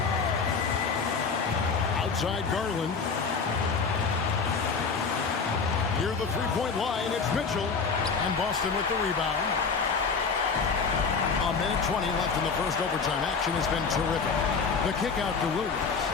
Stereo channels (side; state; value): right; quieter; 5.2 dB